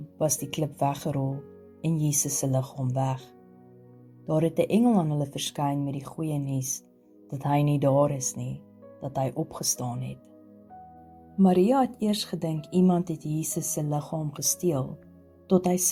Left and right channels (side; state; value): both; identical; correlation 1.00